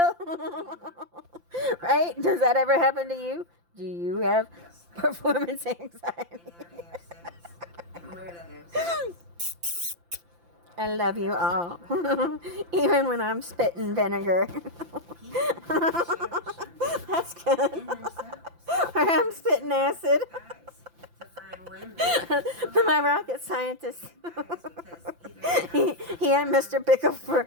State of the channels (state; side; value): late; left; 5.8 ms